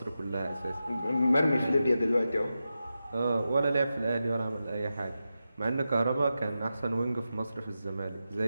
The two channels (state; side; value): inverted; both; correlation -0.91